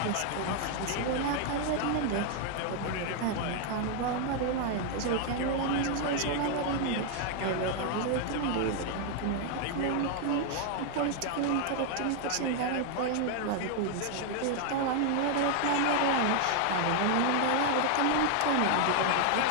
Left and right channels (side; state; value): both; different; correlation 0.00